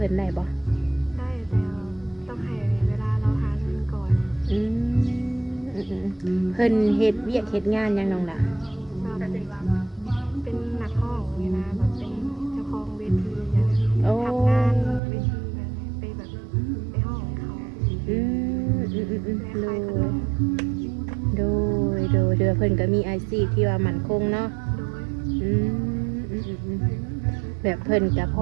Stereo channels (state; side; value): drops out; left; at 15.0 s